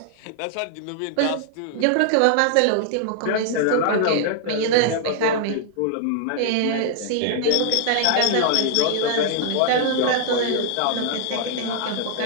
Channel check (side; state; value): both; different; correlation 0.00